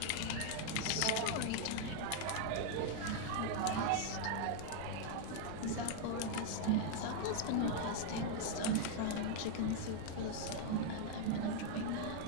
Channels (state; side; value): different; both; correlation 0.00